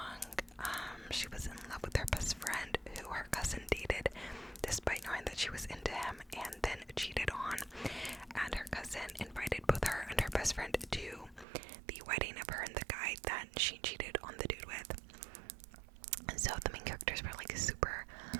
She was in love with her best friend, who her cousin dated, despite knowing that she was into him, and then cheated on. And her cousin invited both her and her best friend to the wedding of her and the guy that she cheated on the dude with. And so the main characters were like super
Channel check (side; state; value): left; drops out; at 11.5 s